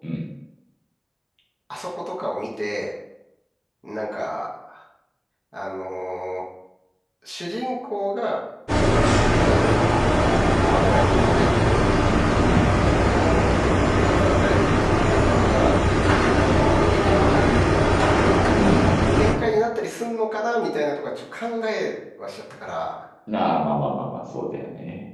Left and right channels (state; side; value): identical; both; correlation 1.00